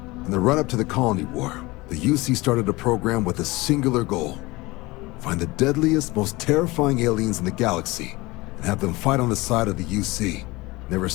In the run-up to the Colony War, the UC started a program with a singular goal. Find the deadliest, most terrifying aliens in the galaxy, and have them fight on the side of the UC. Never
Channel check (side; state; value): right; quieter; 21.9 dB